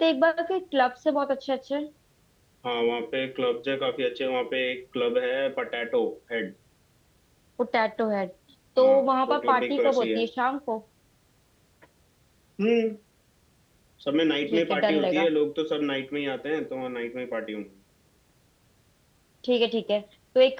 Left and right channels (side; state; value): both; identical; correlation 1.00